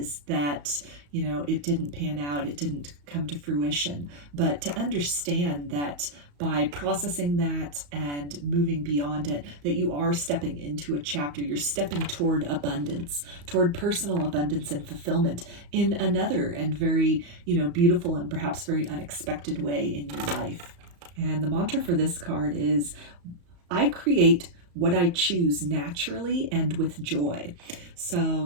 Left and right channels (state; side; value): late; left; 34 ms